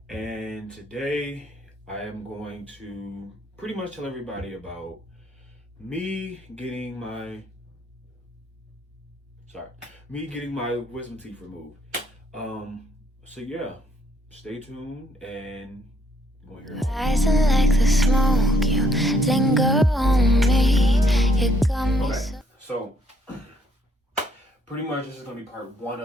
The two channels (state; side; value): normal; both; correlation 0.68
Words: and today I am going to pretty much tell everybody about me getting my sorry, me getting my wisdom teeth removed. So yeah, stay tuned and you're gonna hear it. Rising like the smoke, you linger on me. You got me Okay, so pretty much this is gonna be part one